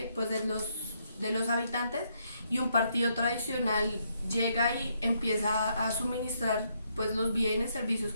pues, de los habitantes, y un partido tradicional llega y empieza a suministrar pues, los bienes, servicios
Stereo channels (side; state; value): both; inverted; correlation -0.75